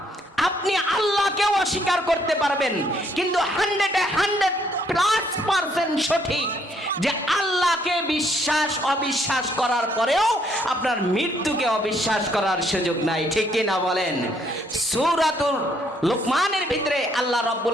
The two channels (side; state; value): both; normal; correlation 0.69